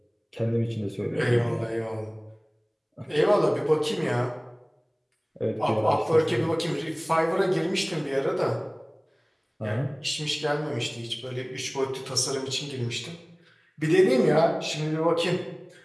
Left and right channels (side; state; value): both; identical; correlation 1.00